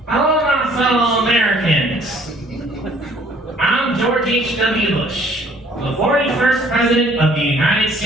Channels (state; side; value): normal; both; correlation 0.58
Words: Hello, my fellow Americans. I'm George H.W. Bush, the 41st President of the United